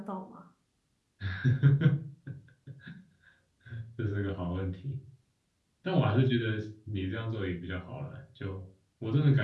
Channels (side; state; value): both; identical; correlation 1.00